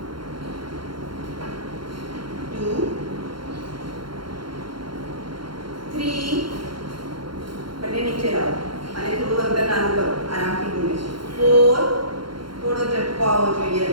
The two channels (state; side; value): late; left; 0.73 ms